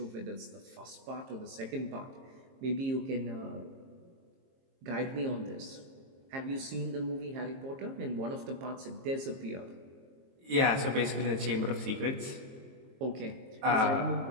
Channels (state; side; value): late; left; 22 ms